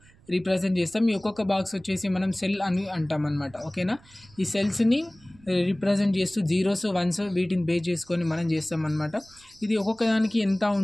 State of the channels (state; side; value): noise; right; rumble, 27 dB below the sound